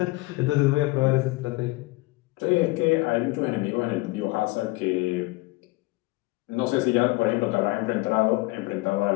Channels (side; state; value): right; quieter; 22.4 dB